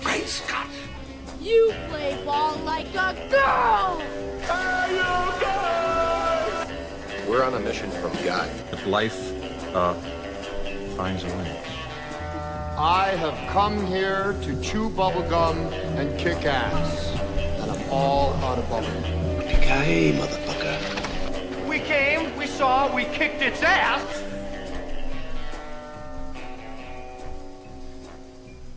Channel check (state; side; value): identical; both; correlation 1.00